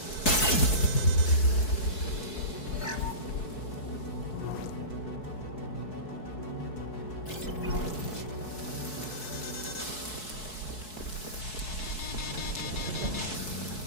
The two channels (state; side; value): late; right; 4.6 ms